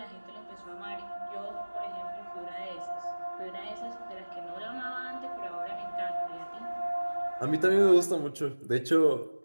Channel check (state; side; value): inverted; both; correlation -1.00